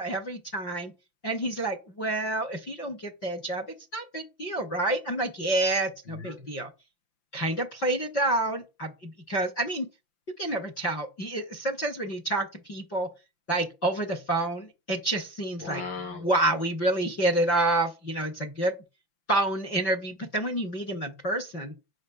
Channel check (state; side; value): late; right; 5.8 ms